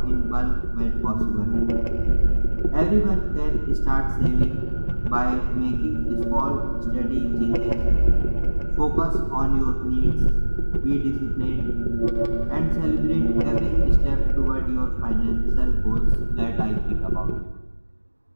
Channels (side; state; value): both; inverted; correlation -1.00